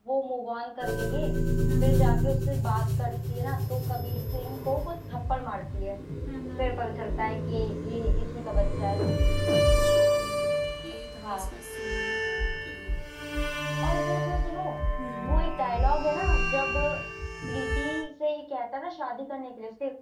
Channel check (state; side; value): identical; both; correlation 1.00